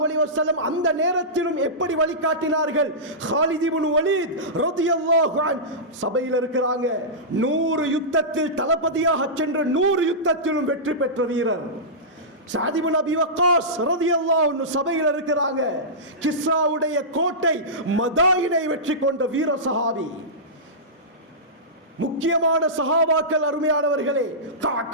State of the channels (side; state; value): both; normal; correlation -0.16